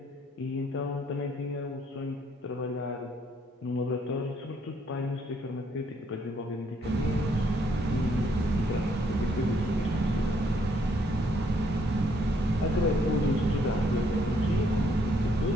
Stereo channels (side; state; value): both; normal; correlation 0.69